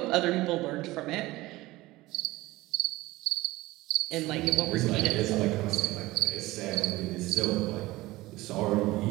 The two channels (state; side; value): quieter; left; 18.9 dB